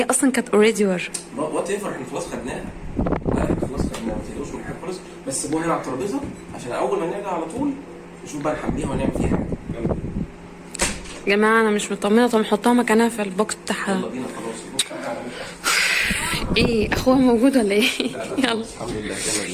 اصلا كانت اوريدي ور. وات ايفر. احنا خلاص خدناها. لا احنا خلاص خدناها. ما تقلقوش من حاجه خالص. بس سيبوها هنا على الترابيزه عشان اول ما نرجع على طول نشوف بقى نحميها ونعمل فيها حاجه. يلا يا جماعه انا مش مطمنه. طب نحطها مكانها في البوكس بتاعها. يلا بينا خلاص. ايه اخوها موجود ولا ايه؟ يلا الحمد لله. يلا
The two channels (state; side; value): identical; both; correlation 1.00